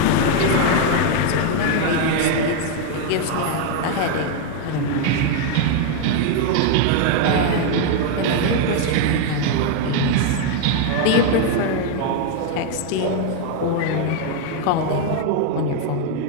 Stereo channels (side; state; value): both; different; correlation 0.01